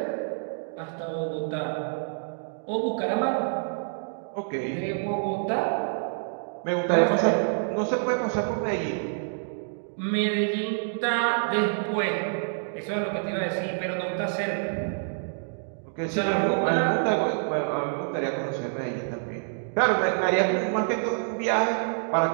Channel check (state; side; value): silent; left; digital silence